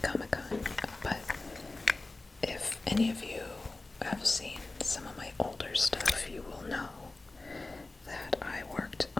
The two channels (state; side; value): quieter; right; 3.2 dB